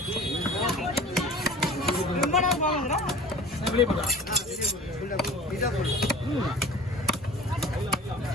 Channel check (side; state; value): both; normal; correlation 0.42